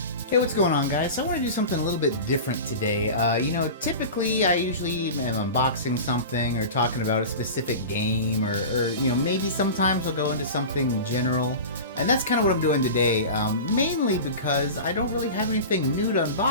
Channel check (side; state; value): both; inverted; correlation -0.31